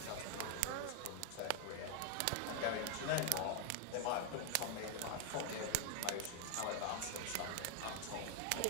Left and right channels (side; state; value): both; different; correlation 0.00